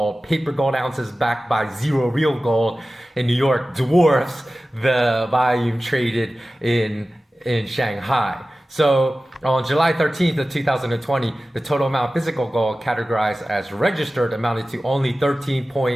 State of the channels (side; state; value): both; normal; correlation 0.96